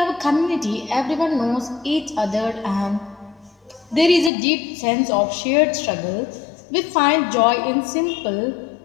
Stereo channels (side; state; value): right; drops out; at 4.3 s